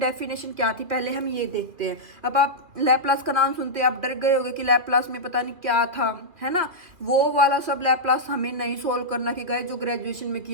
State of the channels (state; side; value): late; left; 2.4 ms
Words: क्या थी, पहले हम ये देखते हैं। अब आप लैप्लास का नाम सुनते हैं आप डर गए होगे कि लैप्लास में पता नहीं क्या था, है ना। वो वाला सब लैप्लास हमें नहीं सोल्व करना कि गए जो ग्रेजुएशन में